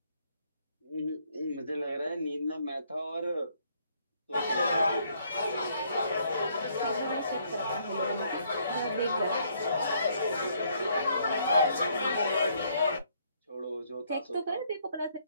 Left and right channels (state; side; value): inverted; both; correlation -0.68